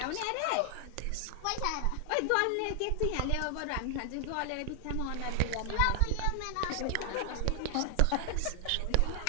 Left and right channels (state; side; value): different; both; correlation 0.00